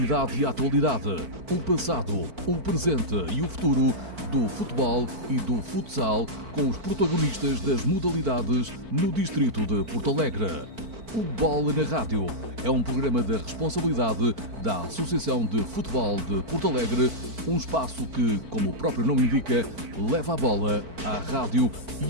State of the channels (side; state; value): left; late; 4.5 ms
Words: e a atualidade, o passado, o presente e o futuro do futebol e do futsal com os protagonistas das modalidades no distrito de Porto Alegre. O Bola na Rádio é um programa da responsabilidade da Associação de Futebol de Porto Alegre, um espaço que, como o próprio nome indica, leva a bola à rádio